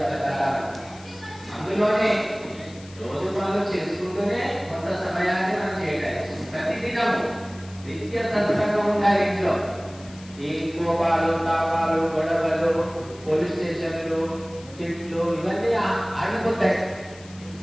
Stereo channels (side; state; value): left; noise; hiss, 22 dB below the sound